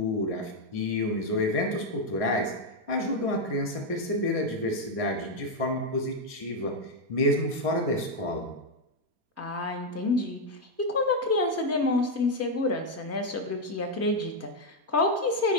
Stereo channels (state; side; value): late; left; 4.2 ms